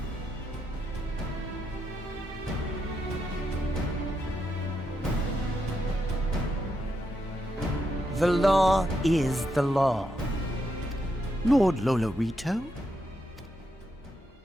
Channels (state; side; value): normal; both; correlation 0.82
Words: The law is the law. Lord Lolorito?